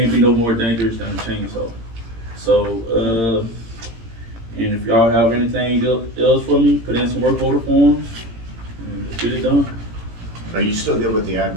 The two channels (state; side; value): late; left; 18 ms